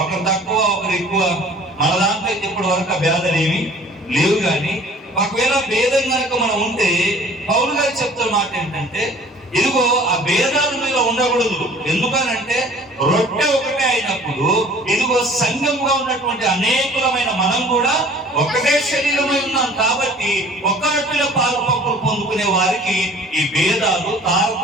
ఒకరు తక్కువ ఒకరు ఎక్కువ, మన దాంట్లో ఇప్పటి వరకు ఆ భేదాలు ఏమి లేవు. కానీ ఒకవేళ భేదం కనుక మనం ఉంటే, పౌలు గారు చెప్తున్న మాట ఏంటంటే, ఇదిగో ఆ భేదాలు మీద ఉండకూడదు. ఎందుకనంటే రొట్టె ఒకటే అయినప్పుడు ఇదిగో సంఘంగా ఉన్నటువంటి అనేకులమైన మనం కూడా ఒకటే శరీరమై ఉన్నాం. కాబట్టి ఒక్క రొట్టెలో పాలు పంపులు పొందుకునే వారికి ఈ భేదాలు,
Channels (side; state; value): both; normal; correlation 0.50